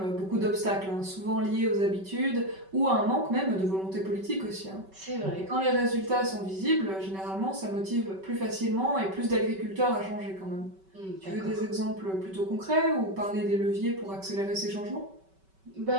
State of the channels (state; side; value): late; left; 5.2 ms